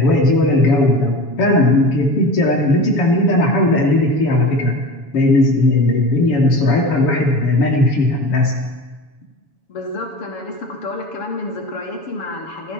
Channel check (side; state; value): right; late; 7.1 ms